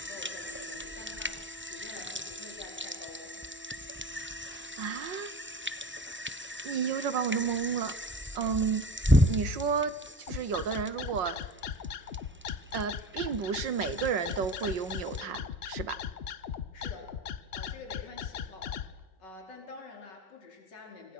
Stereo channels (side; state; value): both; normal; correlation 0.34